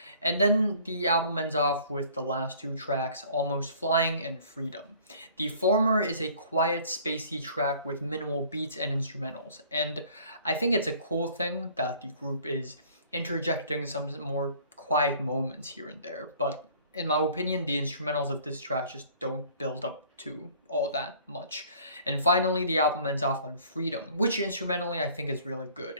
And then the album ends off with the last two tracks, Almost Flying and Freedom. The former is a quiet, spacey track with minimal beats and instrumentals, and I think it's a cool thing that the group is interjecting some more quiet moments here and there, but in my opinion, the instrumentals of this track just don't build up to all that much. And finally, the album ends off on Freedom, which instrumentally I think is really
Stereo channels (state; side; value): inverted; both; correlation -0.53